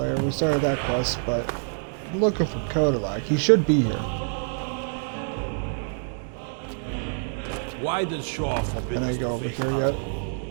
We started that quest, but I'm looking for Kodalak. He should be here. Why does Shore forbid Can I us go to over face here our yet?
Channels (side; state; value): left; silent; digital silence